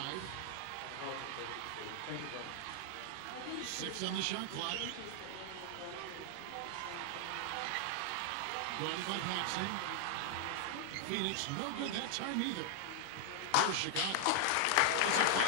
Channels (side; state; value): both; different; correlation 0.00